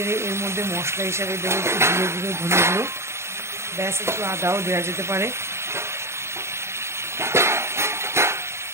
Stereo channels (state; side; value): late; left; 0.13 ms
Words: এর মধ্যে মশলা হিসাবে দেবো একটু জিরে গুঁড়ো, ধনে গুঁড়ো, ব্যাস, একটু আদাও দেওয়া যেতে পারে।